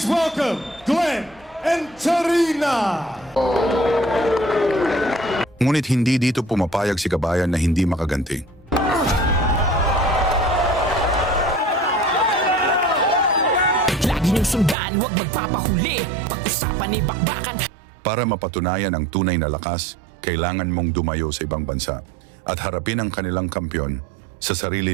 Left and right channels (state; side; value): drops out; left; at 14.8 s